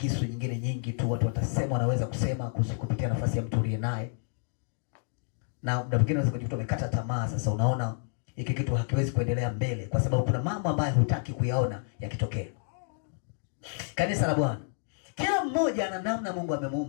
nyingine nyingi tu watu watasema, wanaweza kusema kupitia nafasi ya mtu uliye naye. Na muda mwingine unaweza kujikuta umekata tamaa. Sasa unaona hiki kitu hakiwezi kuendelea mbele kwa sababu kuna mambo ambayo hutaki kuyaona yakitokea. Kanisa la Bwana, kila mmoja ana namna Mungu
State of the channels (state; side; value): silent; right; 58 dB below the other